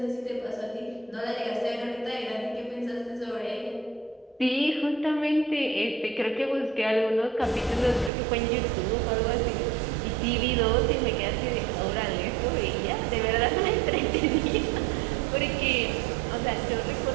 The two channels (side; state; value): left; drops out; at 8.1 s